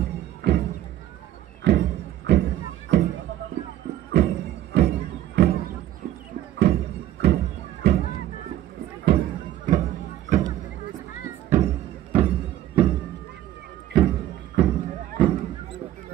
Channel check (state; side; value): quieter; left; 13.0 dB